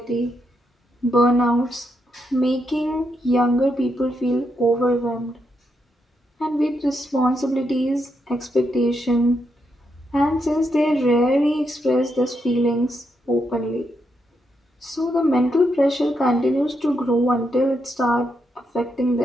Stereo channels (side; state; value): both; normal; correlation 0.81